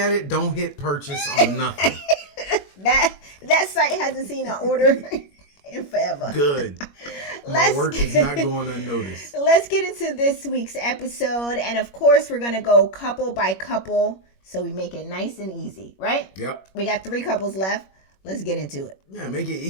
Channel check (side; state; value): right; late; 21 ms